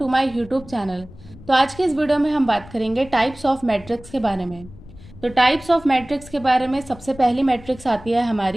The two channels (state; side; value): noise; left; rumble, 19 dB below the sound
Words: my YouTube channel. तो आज के इस वीडियो में हम बात करेंगे टाइप्स ऑफ मैट्रिक्स के बारे में। तो टाइप्स ऑफ मैट्रिक्स के बारे में सबसे पहली मैट्रिक्स आती है